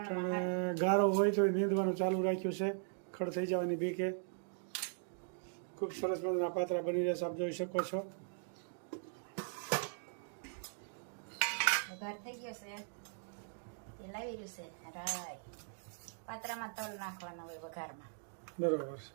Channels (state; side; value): silent; left; digital silence